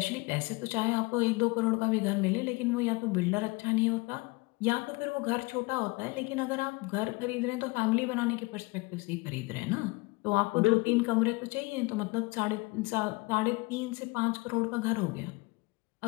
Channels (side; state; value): right; quieter; 24.9 dB